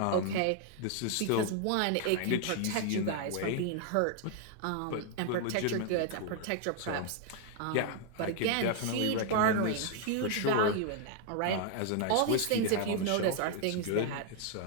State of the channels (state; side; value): different; both; correlation 0.00